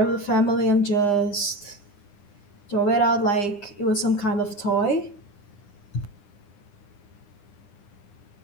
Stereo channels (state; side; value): late; right; 9.9 ms